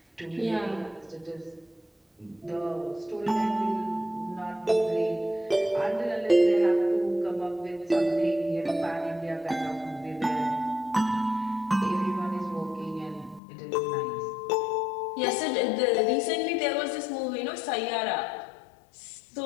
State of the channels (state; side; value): drops out; right; at 13.4 s